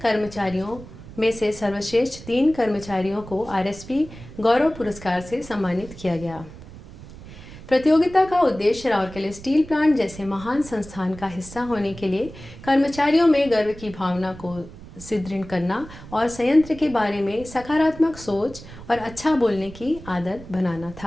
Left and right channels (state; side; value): noise; right; rumble, 16 dB below the sound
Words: कर्मचारियों में से सर्वश्रेष्ठ 3 कर्मचारियों को आरएसपी गौरव पुरस्कार से सम्मानित किया गया। प्रतियोगिता का उद्देश्य राउरकेला स्टील प्लांट जैसे महान संस्थान का हिस्सा होने के लिए कर्मचारियों में गर्व की भावना को सुदृढ़ करना और संयंत्र के बारे में सकारात्मक सोच और अच्छा बोलने की आदत बनाना